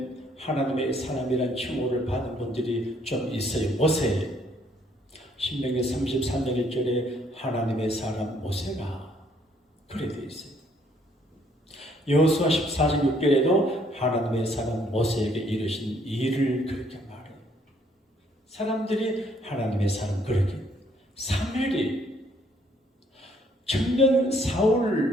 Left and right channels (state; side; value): normal; both; correlation 0.66